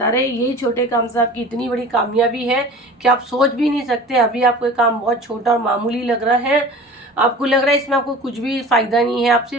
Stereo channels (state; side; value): normal; both; correlation 0.40